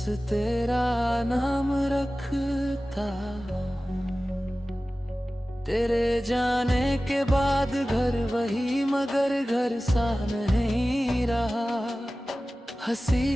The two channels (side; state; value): both; normal; correlation 0.96